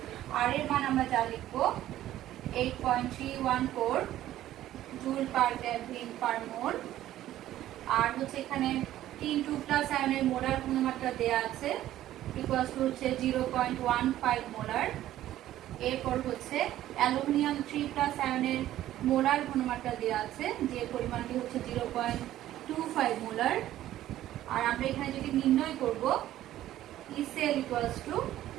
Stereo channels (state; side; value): quieter; left; 13.5 dB